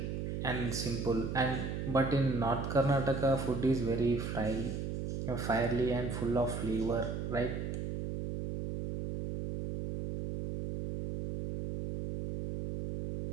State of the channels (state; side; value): noise; right; hum, 3 dB below the sound